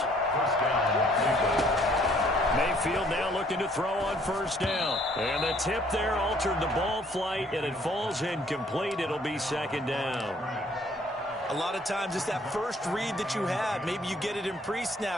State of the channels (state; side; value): normal; both; correlation 0.61